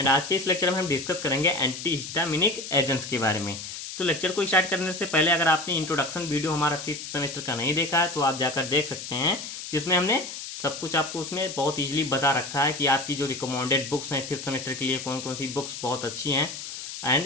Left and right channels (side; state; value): left; noise; hiss, 9 dB below the sound